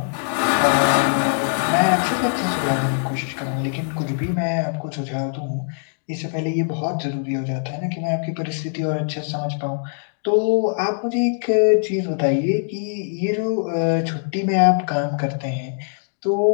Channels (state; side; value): silent; right; 62 dB below the other